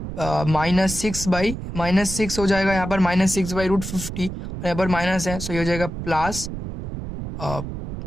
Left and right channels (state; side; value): noise; right; rumble, 7 dB below the sound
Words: -6 हो जाएगा, यहाँ पर -6/√50, और यहाँ पर माइनस है, सो ये हो जाएगा प्लस